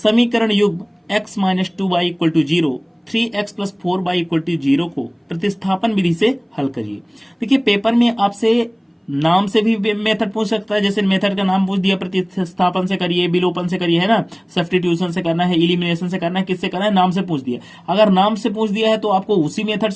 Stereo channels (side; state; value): both; identical; correlation 1.00